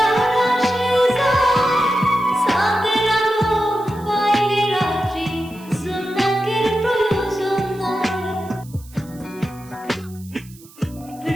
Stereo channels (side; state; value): right; noise; hiss, 23 dB below the sound